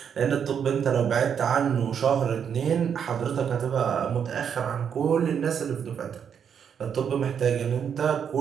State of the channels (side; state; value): left; quieter; 7.7 dB